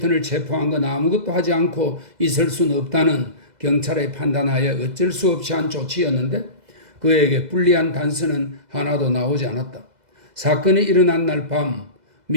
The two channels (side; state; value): left; late; 2.0 ms